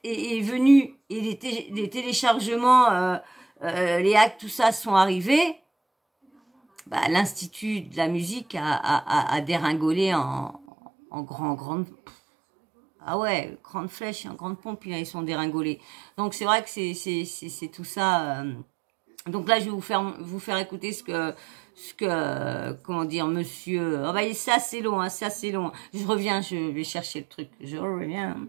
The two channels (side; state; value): left; drops out; at 10.6 s